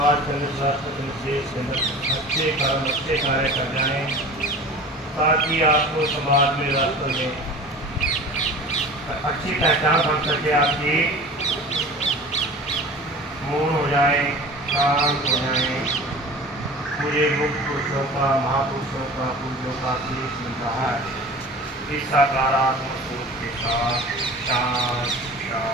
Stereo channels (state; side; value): normal; both; correlation 0.39